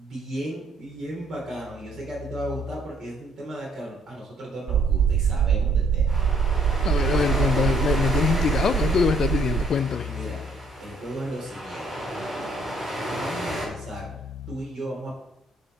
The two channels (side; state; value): both; normal; correlation 0.66